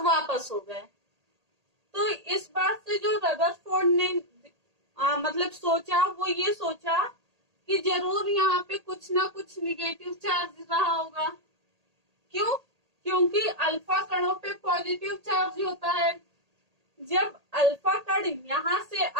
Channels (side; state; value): left; late; 1.8 ms